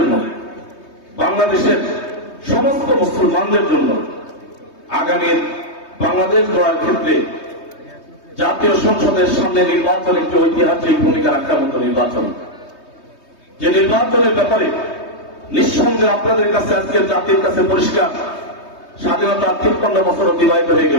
বাংলাদেশের সমস্ত মুসলমানদের জন্য আগামী বাংলাদেশ গড়ার ক্ষেত্রে জাতীয় সংসদের সামনে নির্বাচন একটি ঐতিহাসিক ভূমিকা রাখার মতো নির্বাচন। যে নির্বাচনের ব্যাপারে নিঃসন্দেহে আপনাদের কাছে আজকে জাতির কাছে পরিষ্কার, স্বাধীনতার 53 বছর অতিবাহিত হয়ে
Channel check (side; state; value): right; late; 3.2 ms